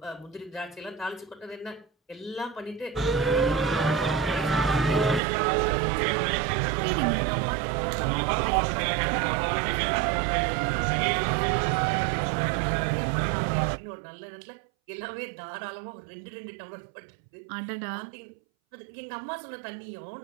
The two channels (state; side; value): drops out; left; at 5.2 s